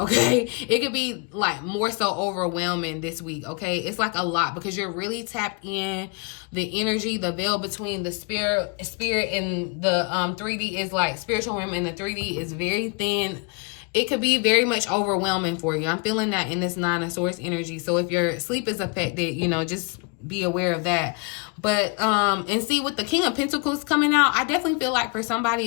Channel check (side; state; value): right; quieter; 31.3 dB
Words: It could be like more so overwhelming this week, okay? It's like a lot because you're really tapped in the energy. The veil between the spirit and the 3D is like spiritual realm, and the 3D is very thin. It could be very much overwhelming for you. I'm feeling that in this Nine of Swords energy. So if your sleep is affected, you know, just be aware of that. But and see, with the King of Pentacles coming out, I definitely feel like for somebody